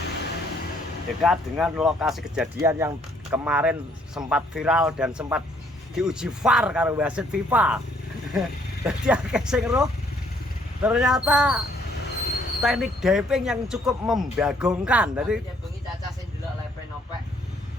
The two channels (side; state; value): both; normal; correlation 0.65